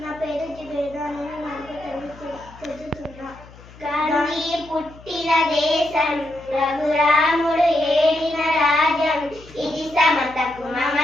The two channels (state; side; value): noise; left; hum, 21 dB below the sound